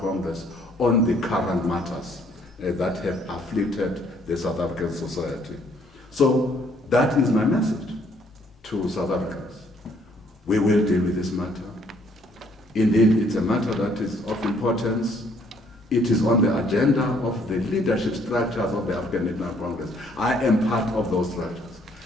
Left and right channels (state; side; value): normal; both; correlation 0.64